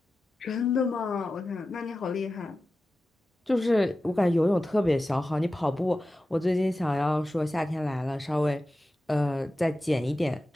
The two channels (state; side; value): normal; both; correlation 0.94